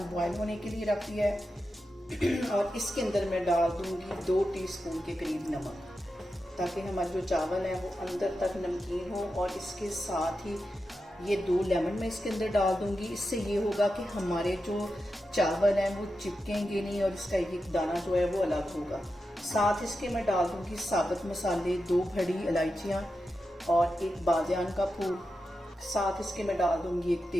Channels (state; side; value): normal; both; correlation 0.89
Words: बॉयल होने के लिए रख दिया है और इसके अंदर मैं डाल दूँगी 2 टीस्पून के करीब नमक, ताकि हमारे जो चावल है वो अंदर तक नमकीन हो। और इसके साथ ही ये 2 लेमन मैं इसके अंदर डाल दूंगी। इससे ये होगा कि हमारे जो चावल हैं वो चिपकेंगे नहीं और इसका एक दाना जो है वो अलग होगा। साथ इसके मैं डाल दूंगी साबुत मसाले, 2 बड़ी इलायचियाँ और 1 बादियान का फूल। साथ इसके मैं डाल दूंगी 1